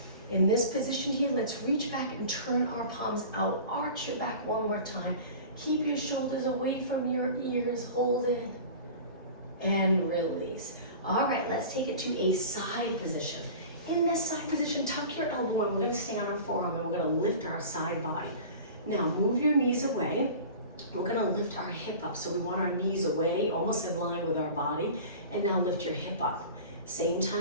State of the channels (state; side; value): inverted; both; correlation -0.38